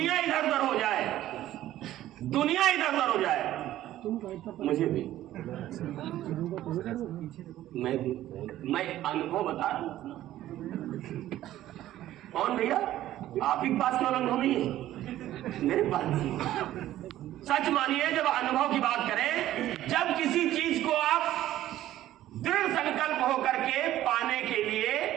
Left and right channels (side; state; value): left; quieter; 13.7 dB